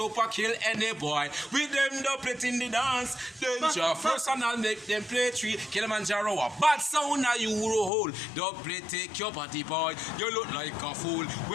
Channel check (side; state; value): right; drops out; at 7.9 s